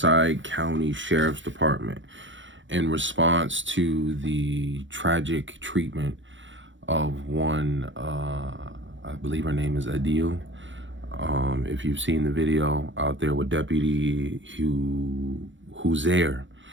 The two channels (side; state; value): left; late; 0.55 ms